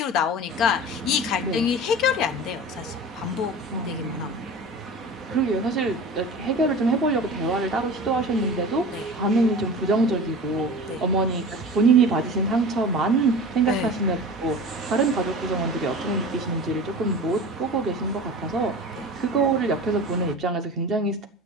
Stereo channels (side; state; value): both; normal; correlation 0.35